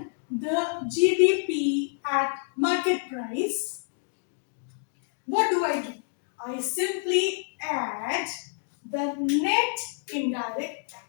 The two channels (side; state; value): right; silent; 59 dB below the other